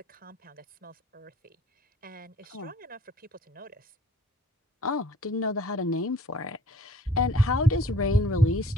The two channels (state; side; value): normal; both; correlation 0.54